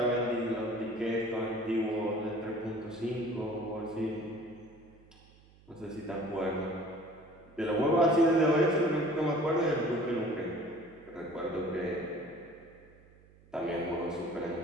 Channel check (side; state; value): right; noise; hum, 26 dB below the sound